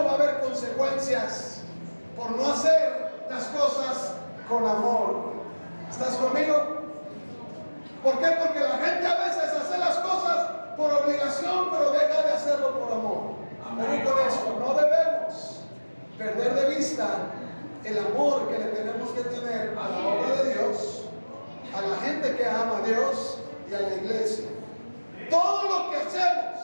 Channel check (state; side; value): inverted; both; correlation -1.00